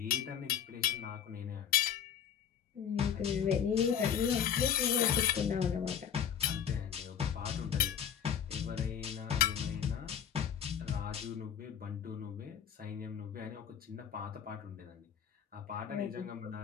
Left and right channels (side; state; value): right; quieter; 8.6 dB